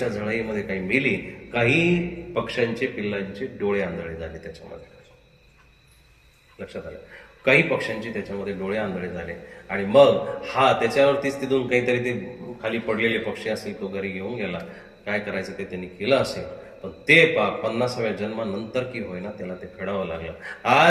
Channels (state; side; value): identical; both; correlation 1.00